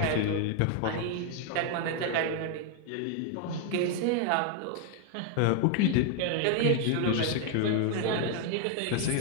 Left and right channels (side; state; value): both; different; correlation 0.00